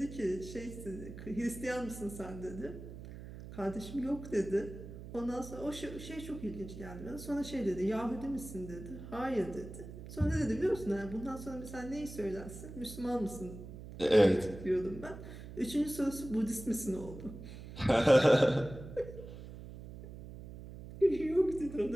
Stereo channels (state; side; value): noise; right; hum, 12 dB below the sound